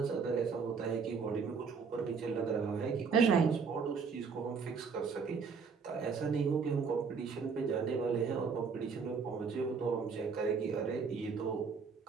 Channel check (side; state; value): left; quieter; 5.5 dB